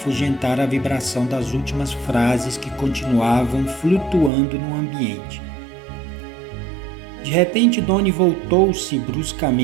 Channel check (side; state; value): left; drops out; at 4.3 s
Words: a vibração das últimas frases que continuavam flutuando no ambiente. De repente, Doni voltou-se